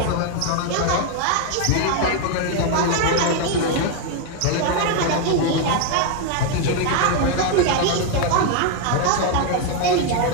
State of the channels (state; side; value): different; both; correlation 0.01